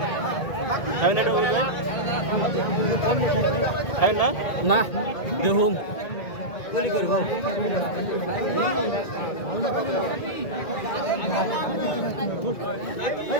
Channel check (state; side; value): late; right; 1.9 ms